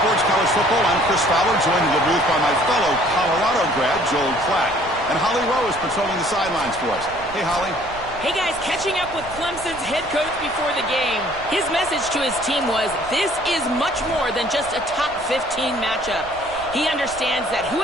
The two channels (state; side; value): noise; right; rumble, 19 dB below the sound